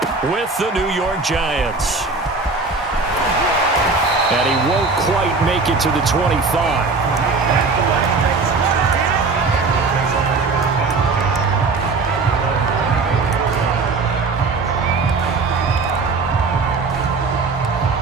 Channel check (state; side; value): quieter; left; 4.1 dB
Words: with the New York Giants. And he won't quite make it to the 25.